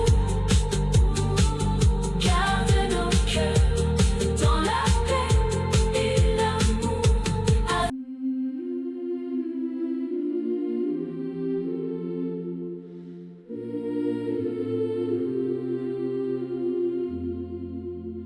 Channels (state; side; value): identical; both; correlation 1.00